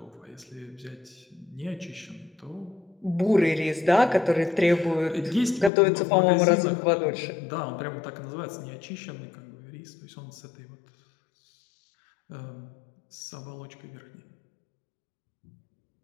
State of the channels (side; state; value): right; drops out; at 5.7 s